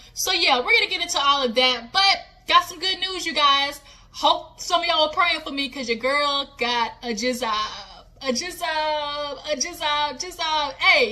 So yeah, we're gonna get into all of that, but got some good news, you guys. Hope some of y'all are praying for me, because your girl got a jizzab. Hey,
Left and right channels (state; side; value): identical; both; correlation 1.00